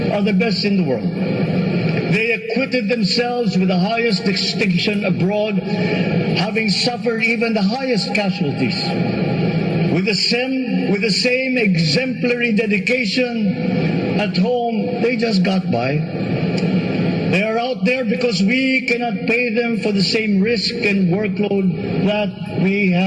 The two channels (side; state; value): both; identical; correlation 1.00